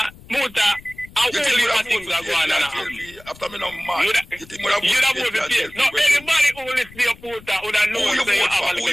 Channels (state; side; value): noise; left; rumble, 21 dB below the sound